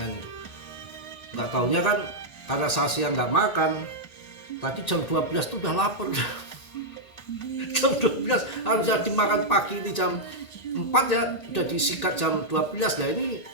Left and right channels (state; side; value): late; right; 1.8 ms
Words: itu. Nggak taunya kan karena saya siang nggak makan, tadi jam 12 tuh udah lapar. Jam 12 harusnya dimakan pagi, ini jam 4 ya udah disikat jam 12 ya. Ini